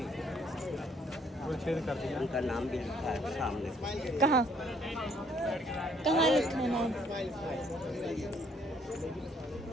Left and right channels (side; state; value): both; normal; correlation 0.64